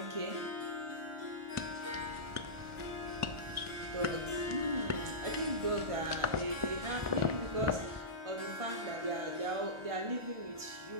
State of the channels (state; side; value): late; left; 1.4 ms